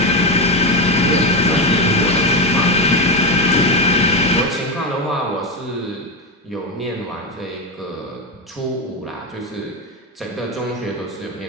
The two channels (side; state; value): both; normal; correlation 0.11